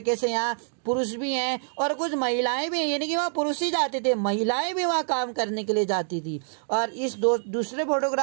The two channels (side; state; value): left; silent; digital silence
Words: से यहाँ पुरुष भी हैं और कुछ महिलाएं भी हैं, यानी कि वहाँ पुरुष ही जाते थे, महिलाएं भी वहाँ काम करने के लिए जाती थी। और इस दूसरे